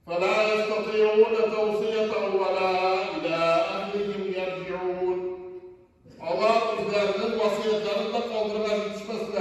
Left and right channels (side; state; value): both; identical; correlation 1.00